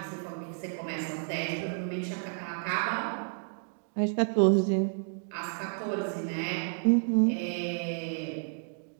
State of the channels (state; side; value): silent; left; 57 dB below the other